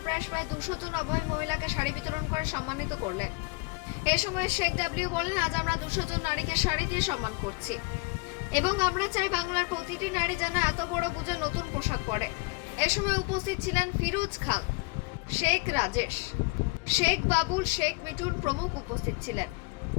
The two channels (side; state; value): right; quieter; 27.3 dB